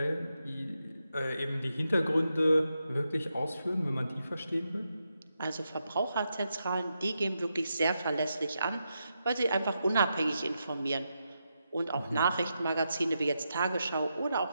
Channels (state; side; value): inverted; both; correlation -0.85